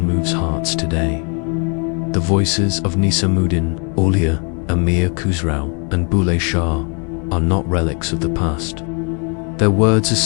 hearts today. The voices of Nisamuddin, Aulia, Amir Khusrau, and Bulleh Shah are not relics of the past. Their words are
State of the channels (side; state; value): right; quieter; 37.4 dB